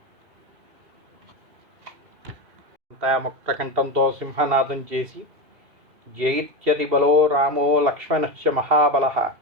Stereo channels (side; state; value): left; late; 2.5 ms